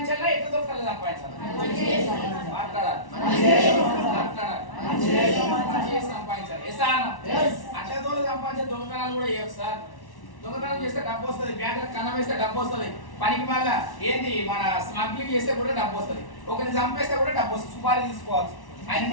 ఎట్లా దొరకాలి సంపాదించాలా, మాట్లాడాలి సంపాదించాలి. అట్లా దూరం సంపాదించే దొంగతనాలు కూడా చేయొచ్చు సార్. దొంగతనం చేస్తే డబ్బు వస్తుంది, బ్యాంకులకు కన్నం వేస్తే డబ్బు వస్తుంది, పనికి మళ్ళా ఏంది మన స్మగ్లింగ్ చేస్తే కూడా డబ్బు వస్తుంది, ఒకరిని చంపేస్తే కూడా డబ్బు వస్తుంది, సుపారీ తీసుకోవచ్చు. ఆయన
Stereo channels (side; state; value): right; late; 1.1 ms